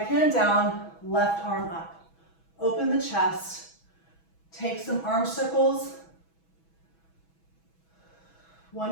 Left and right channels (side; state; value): right; late; 6.1 ms